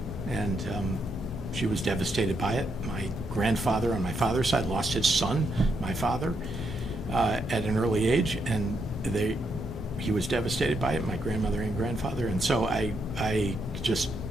and she was devastated by it. My grandfather on my father's side lost his son, my father, at an early age, and he was devastated by it, my grandmother and grandfather, and so I just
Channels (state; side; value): normal; both; correlation 0.79